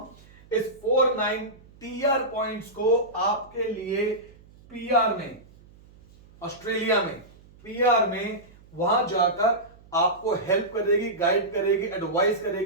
इस 49 टीआर पॉइंट्स को आपके लिए पीआर में, ऑस्ट्रेलिया में पीआर में वहां जाकर आपको हेल्प करेगी, गाइड करेगी, एडवाइस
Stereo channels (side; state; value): right; noise; hum, 25 dB below the sound